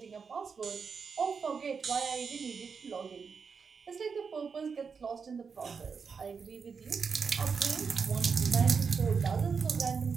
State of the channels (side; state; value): left; quieter; 5.7 dB